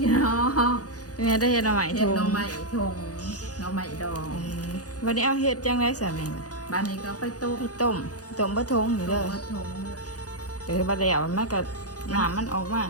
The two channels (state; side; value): late; right; 0.67 ms